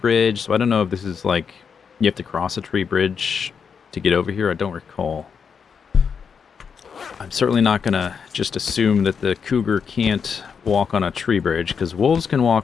so I don't know if this is like you have to cross a tree bridge to get over here. I don't recall. I'm certainly not gonna just assume that the cougar can't walk on a tree bridge, because wolves can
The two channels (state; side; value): quieter; right; 6.4 dB